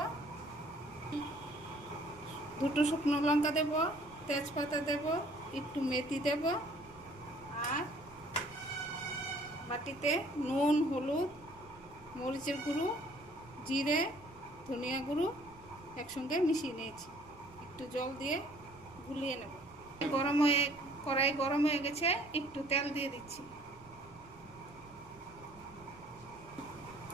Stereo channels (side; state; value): right; noise; rumble, 22 dB below the sound